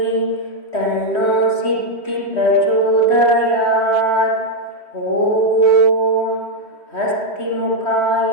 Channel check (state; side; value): late; right; 3.1 ms